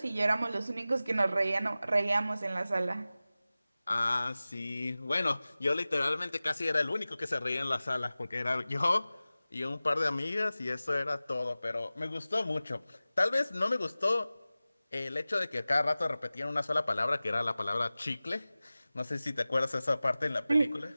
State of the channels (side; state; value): both; inverted; correlation -0.97